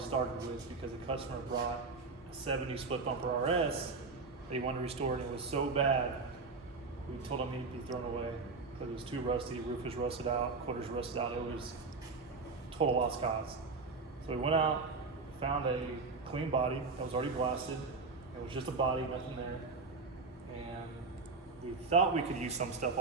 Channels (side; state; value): left; quieter; 4.1 dB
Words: with because the customer brought a 70 split bumper RS. They wanted to restore it, and it was so bad, we told him he'd be thrown away because it was too rusty, roof was rusted out, quarters rusted out, it was total lost cause. So we went out, found a clean body that was already blasted. It was just a body, nothing there. And we thought we could use some stuff